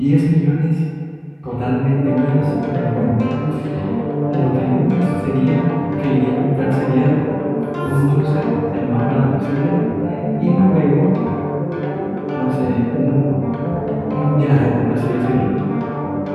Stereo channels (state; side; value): identical; both; correlation 1.00